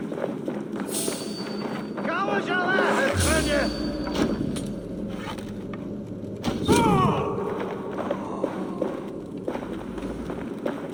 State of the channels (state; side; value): identical; both; correlation 1.00